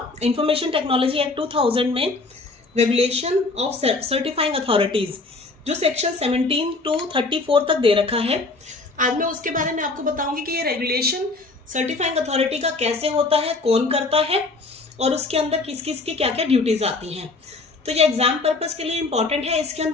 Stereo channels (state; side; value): quieter; right; 3.5 dB